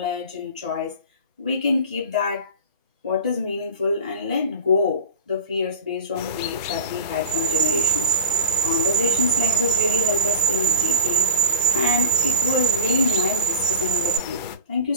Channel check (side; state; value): both; inverted; correlation -0.33